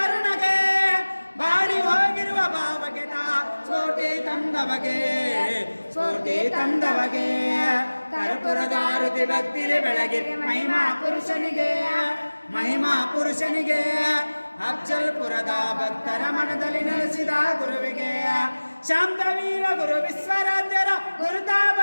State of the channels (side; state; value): both; inverted; correlation -1.00